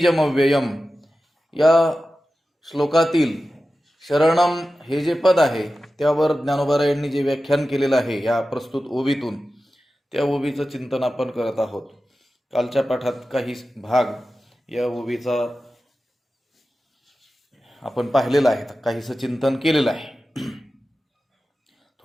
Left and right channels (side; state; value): both; normal; correlation 0.94